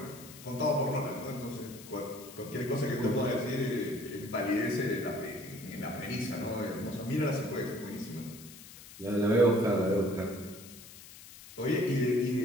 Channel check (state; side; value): noise; left; hiss, 17 dB below the sound